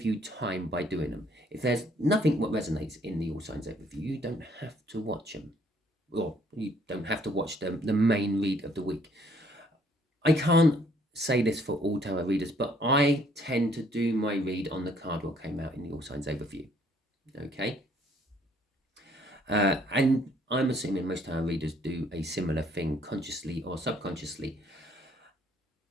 you time by doing them. If there's nothing what resonates in the All Signs overview, you don't have to watch them. Or you don't have to watch the main read of the week. I can't say this for all tarot readers, but I tend to do my read on the card what came out in the All Signs overview. Okay? And I'm assuming most tarot readers do a similar thing, consciously or subconsciously.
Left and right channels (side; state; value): both; normal; correlation 0.64